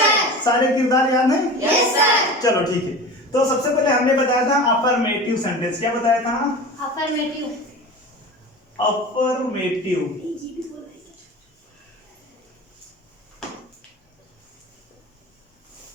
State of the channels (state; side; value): normal; both; correlation 0.33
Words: सारे किरदार याद हैं? Yes sir. चलो ठीक है। तो सबसे पहले हमने बताया था अफर्मेटिव सेंटेंस। क्या बताया था? अफर्मेटिव। अफर्मेटिव।